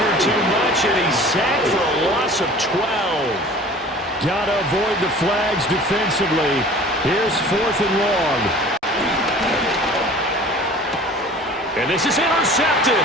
too much, and he's sacked for a loss of 12. Got to avoid the flags defensively. Here's 4th and long. And this is intercepted,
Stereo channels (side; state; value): both; normal; correlation 0.45